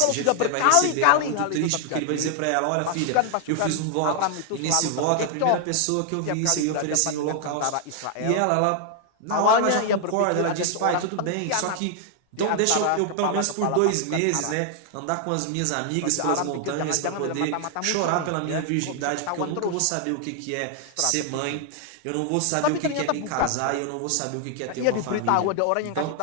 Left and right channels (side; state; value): both; different; correlation 0.00